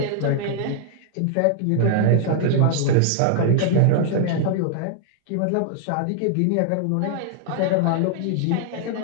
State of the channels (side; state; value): both; different; correlation 0.00